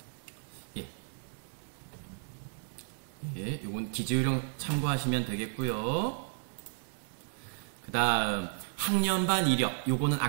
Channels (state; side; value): silent; left; 56 dB below the other